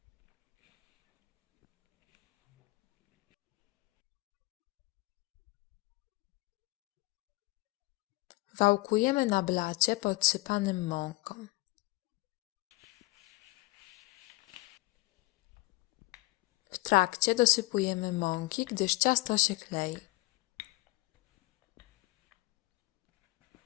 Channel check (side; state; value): right; quieter; 22.4 dB